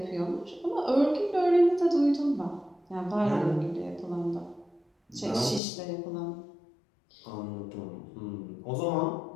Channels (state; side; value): drops out; right; at 5.6 s